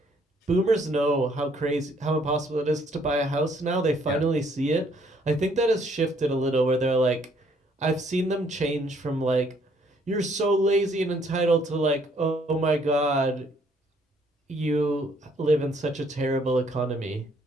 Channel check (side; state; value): both; normal; correlation 0.66